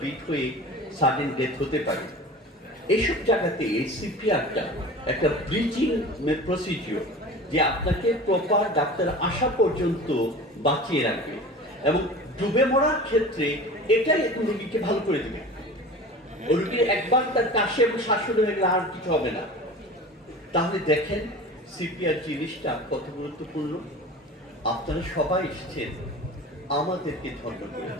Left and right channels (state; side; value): normal; both; correlation 0.37